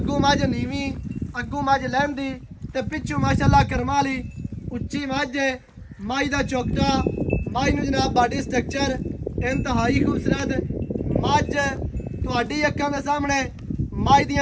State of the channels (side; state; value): both; identical; correlation 1.00